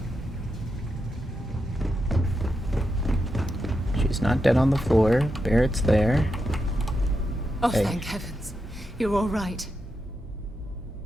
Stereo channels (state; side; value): normal; both; correlation 0.86